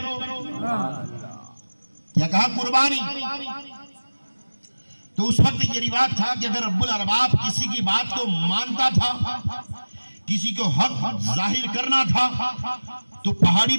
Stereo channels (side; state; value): both; inverted; correlation -1.00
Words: क्या कहा? कुर्बानी। तो उस वक्त ये रिवाज था कि अगर रब्बुल अरबाब किसी की बात को मानता था, किसी को हक जाहिर करना था, तो पहाड़ी